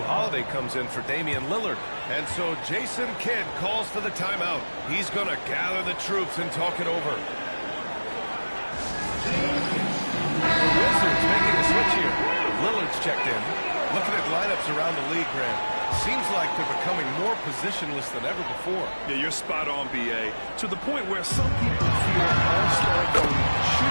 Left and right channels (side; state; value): both; inverted; correlation -1.00